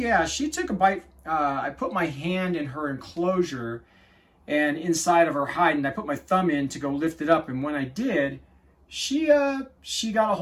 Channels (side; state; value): both; identical; correlation 1.00